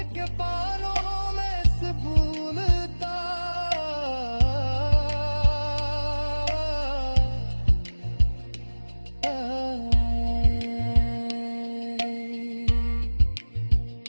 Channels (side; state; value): both; inverted; correlation -1.00